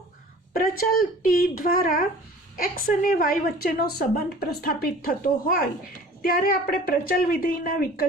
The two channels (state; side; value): normal; both; correlation 0.45